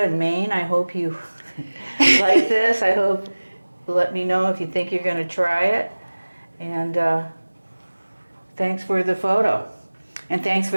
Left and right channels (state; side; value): inverted; both; correlation -1.00